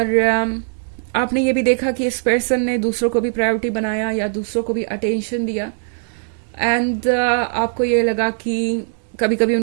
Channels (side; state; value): left; silent; digital silence